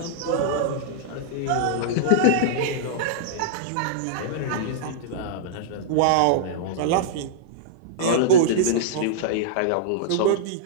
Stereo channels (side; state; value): both; different; correlation -0.02